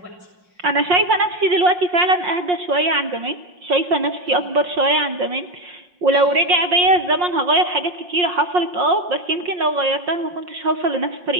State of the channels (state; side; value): late; left; 5.6 ms